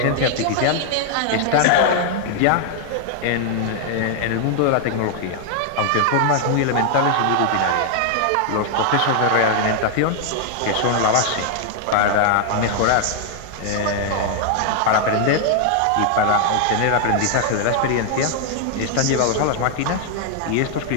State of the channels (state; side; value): different; both; correlation 0.00